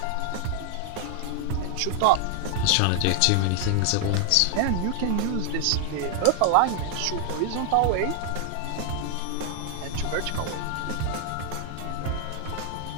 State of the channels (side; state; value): both; different; correlation 0.00